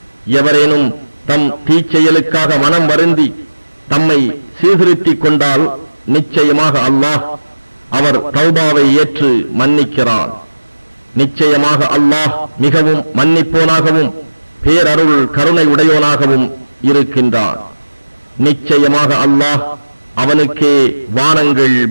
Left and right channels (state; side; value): inverted; both; correlation -1.00